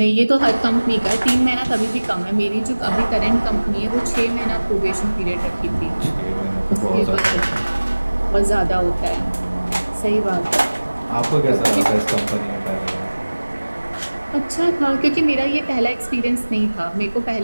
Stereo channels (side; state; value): both; inverted; correlation -1.00